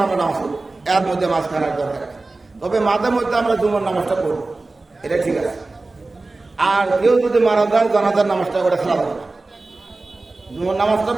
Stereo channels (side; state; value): left; quieter; 3.4 dB